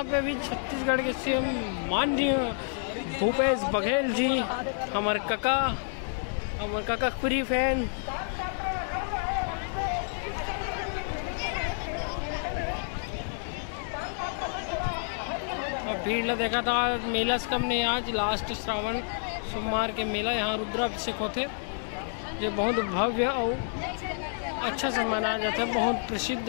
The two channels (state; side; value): silent; right; digital silence